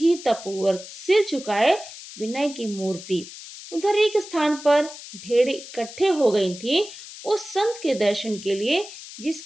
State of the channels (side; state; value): left; noise; hiss, 14 dB below the sound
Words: सिर झुकाए, विनय की मूर्ति। उधर एक स्थान पर भेड़ें इकट्ठे हो गई थी, उस संत के दर्शन के लिए,